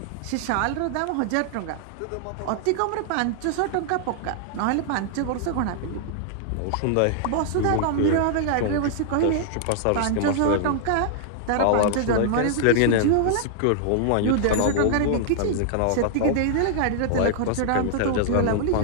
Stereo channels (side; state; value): both; different; correlation -0.01